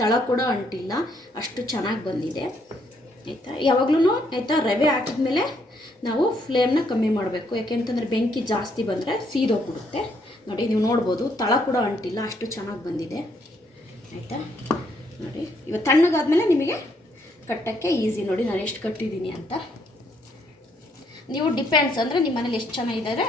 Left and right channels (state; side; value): normal; both; correlation 0.71